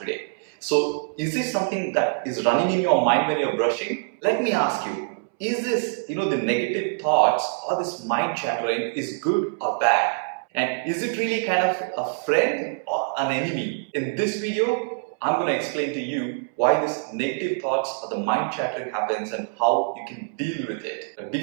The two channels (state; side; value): silent; left; 62 dB below the other